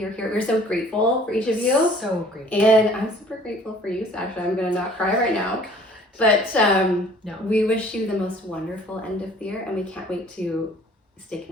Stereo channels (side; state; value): both; normal; correlation 0.53